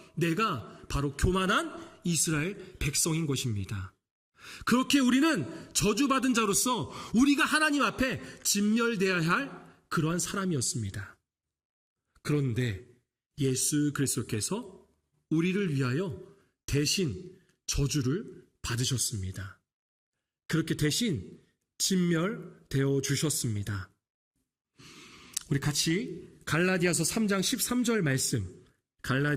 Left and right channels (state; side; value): identical; both; correlation 1.00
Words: 내가 바로 교만한 이스라엘 백성인 것입니다. 그렇게 우리는 저주받은 자로서 우리가 하나님 앞에 진멸되어야 할 그러한 사람이었습니다. 그런데 예수 그리스도께서 우리를 위하여 대신 저주를 받으셨습니다. 그렇게 대신 진멸되어 주셨습니다. 우리 같이 갈라디아서 3장 13절 말씀,